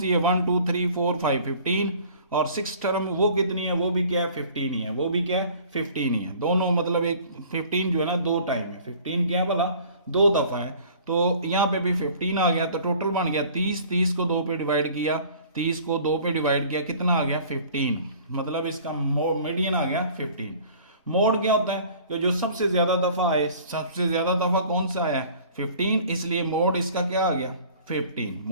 है 1 2 3 4 5 15 और 6th टर्म वो कितनी है, वो भी क्या है 15 ही है, वो भी क्या है 15 ही है। दोनों मतलब एक 15 जो है ना 2 टाइम है, 15 क्या है भला 2 दफा है। तो यहाँ पे भी 15 आ गया, तो टोटल बन गया 30, 30 को 2 पे डिवाइड किया, 30 को 2 पे डिवाइड किया, कितना आ गया 15। मतलब इसका मीडियन आ गया 15। मोड क्या होता है कि जो सबसे ज्यादा दफा आए, सबसे ज्यादा दफा कौन सा आया 15, इसलिए मोड इसका क्या आ गया 15।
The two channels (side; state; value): both; inverted; correlation -0.49